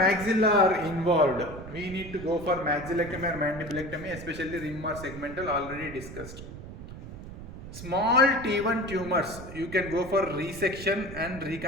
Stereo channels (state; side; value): noise; right; rumble, 12 dB below the sound